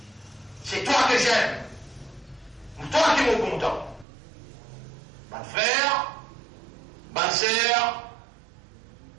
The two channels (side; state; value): left; drops out; at 4.0 s